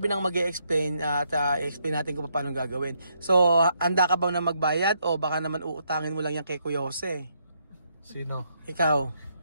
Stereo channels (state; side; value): inverted; both; correlation -0.75